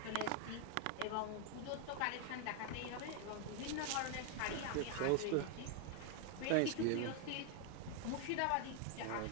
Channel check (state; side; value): different; both; correlation 0.00